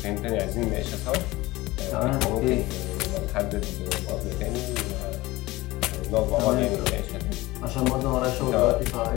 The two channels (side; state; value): right; quieter; 19.7 dB